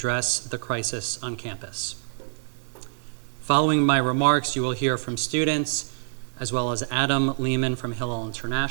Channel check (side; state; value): left; silent; 61 dB below the other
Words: the crisis on campus. Following my remarks, you will hear from students, as well as Adam Lehman from Hillel